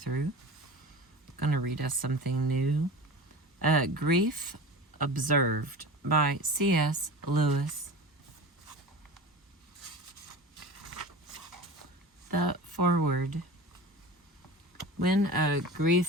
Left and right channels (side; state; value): both; normal; correlation 0.34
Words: I'm going to read us something new. Grief Observed by C.S. Lewis. The foreword. When